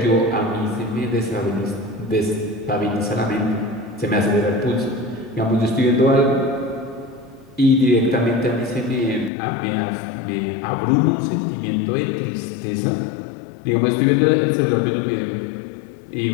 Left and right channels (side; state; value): right; drops out; at 9.3 s